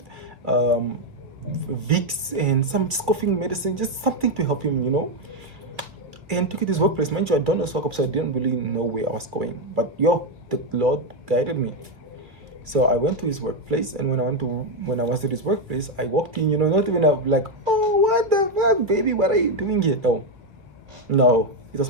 Vicks, and some just coughing medicine, just something to help him, you know. And took it to his workplace. Mind you, I don't know Swakop, so I didn't really know where I was going. But yo, the Lord guided me. So I went to his workplace, and when I was at his workplace, I walked in, you know, not even like, oh, what the fuck, baby, what are you doing here? No, it was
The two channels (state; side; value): late; left; 2.6 ms